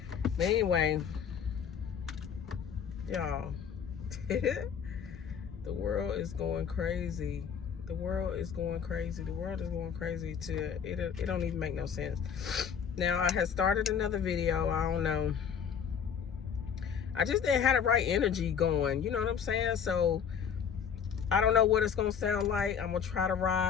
But anyway, y'all, the world is going crazy. The world is going crazy. The world is going crazy to it don't even make no sense. Now, I had started another video. I don't know. I just didn't have the right energy going. You know what I'm saying? So I don't know what it's gonna sound like. I'm gonna try to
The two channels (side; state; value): right; quieter; 7.4 dB